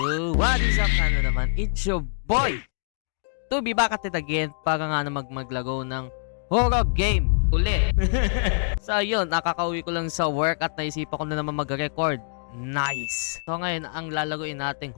what is up na naman? It's your boy! To be back at it again para nga na maglago ng horror game ulit. So, yun, nakakauwi ko lang sa work at naisipan ko na naman mag-record. Nice! So, ngayon, ang lalaguin nating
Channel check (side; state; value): right; silent; digital silence